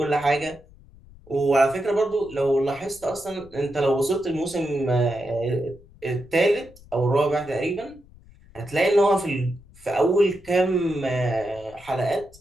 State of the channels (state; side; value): noise; left; rumble, 24 dB below the sound